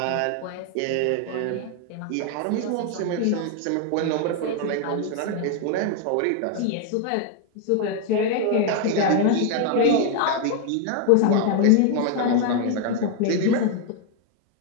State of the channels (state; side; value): different; both; correlation 0.01